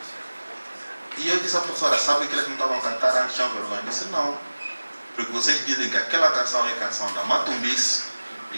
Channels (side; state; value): both; inverted; correlation -1.00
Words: E eu disse à professora, sabe que eles não estavam a cantar antes, tinham vergonha? Eu disse, não. Porque vocês dizem que aquela canção é canção da Matumbice,